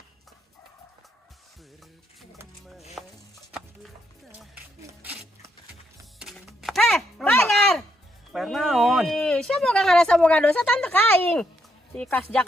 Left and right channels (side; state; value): both; normal; correlation 0.76